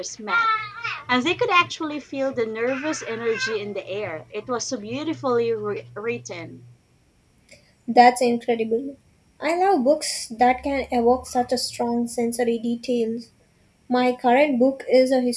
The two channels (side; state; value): both; identical; correlation 1.00